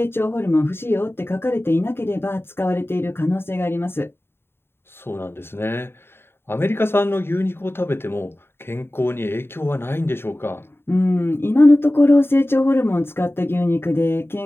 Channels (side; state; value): right; late; 0.11 ms